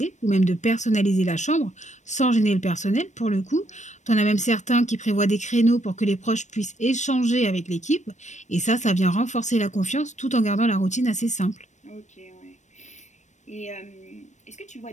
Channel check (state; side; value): late; right; 0.34 ms